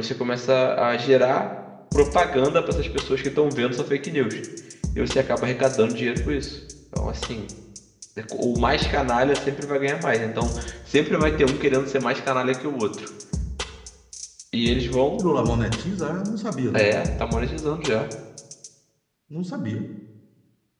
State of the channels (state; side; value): identical; both; correlation 1.00